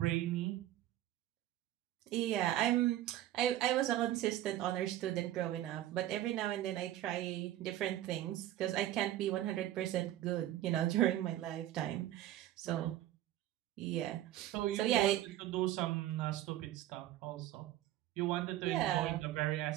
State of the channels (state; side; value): quieter; left; 13.7 dB